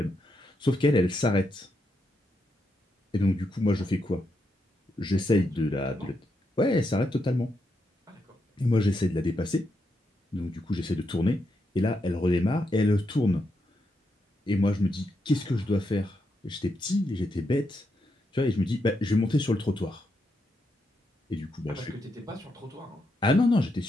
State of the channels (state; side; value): normal; both; correlation 0.82